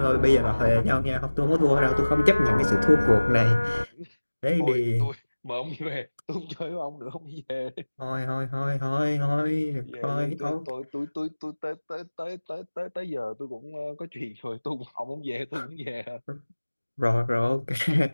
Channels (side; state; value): both; inverted; correlation -1.00